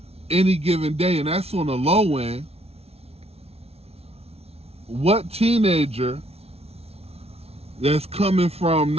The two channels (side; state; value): left; late; 0.30 ms